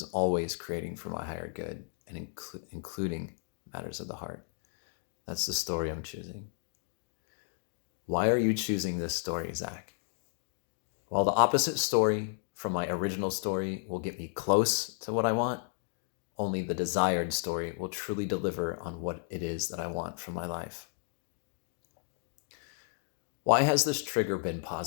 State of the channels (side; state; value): right; silent; 56 dB below the other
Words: always creating for my higher good and including matters of the heart. That's the story I'm choosing. Why are you choosing this story, Zach? While the opposite story from my original story will get me close to what I want, only the desired story will truly deliver on what it is that I want from my life. Why has this trigger been